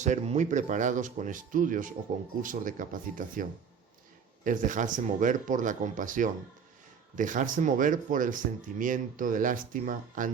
muy preparados con estudios o concursos de capacitación. Es dejarse mover por la compasión, dejarse mover por el sentimiento de lástima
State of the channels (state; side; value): quieter; left; 6.7 dB